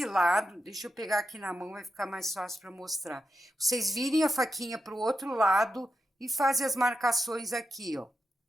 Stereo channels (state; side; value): normal; both; correlation 0.87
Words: lado, deixa eu pegar aqui na mão, vai ficar mais fácil para mostrar. Vocês virem a faquinha para o outro lado e fazem as marcações aqui, ó.